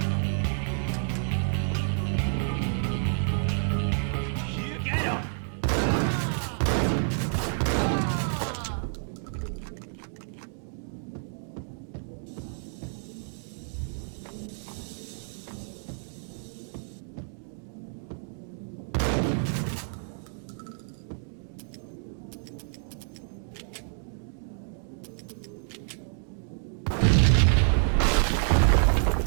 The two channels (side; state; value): left; silent; 59 dB below the other